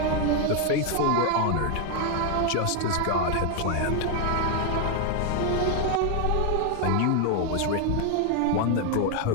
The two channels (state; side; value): different; both; correlation 0.01